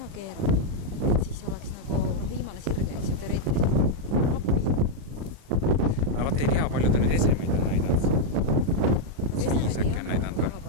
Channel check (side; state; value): left; late; 36 ms